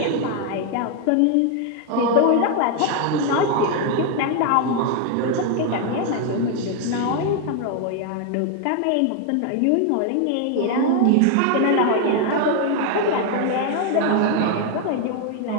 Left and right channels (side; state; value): both; different; correlation 0.00